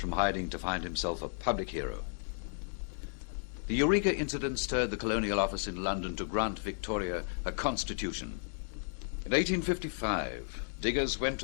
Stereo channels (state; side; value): silent; right; digital silence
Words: hiding to find himself a public hero. The Eureka incident stirred the Colonial Office in London to grant Victoria a constitution. In 1855, diggers went to